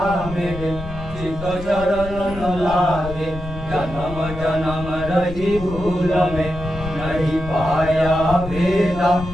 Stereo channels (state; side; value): noise; left; rumble, 11 dB below the sound